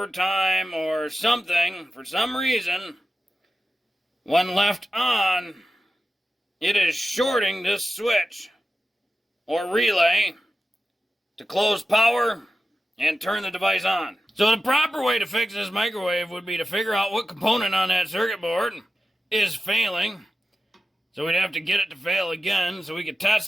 time or something, for some reason, when left on, it is shorting this switch or relay to close power and turn the device on. So the proper way to fix this microwave would be to figure out what component on that circuit board is failing. So we'd have to get it to fail again so we could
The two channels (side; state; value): both; normal; correlation 0.92